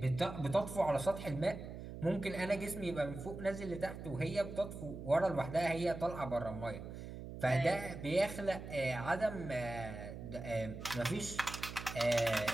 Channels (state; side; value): noise; right; hum, 10 dB below the sound